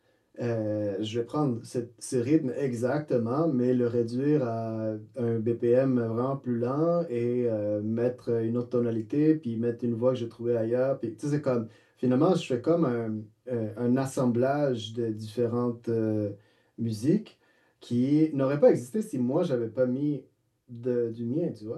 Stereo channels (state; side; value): identical; both; correlation 1.00